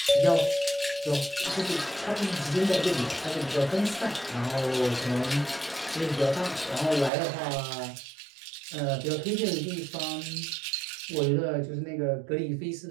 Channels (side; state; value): left; drops out; at 7.1 s